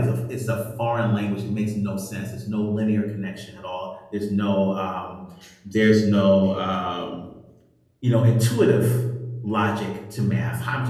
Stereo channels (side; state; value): both; identical; correlation 1.00